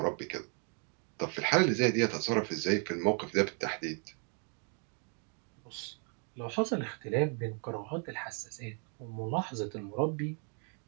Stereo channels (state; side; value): quieter; left; 39.4 dB